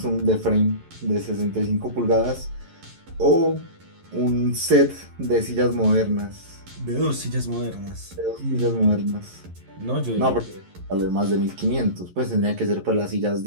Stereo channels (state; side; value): late; left; 11 ms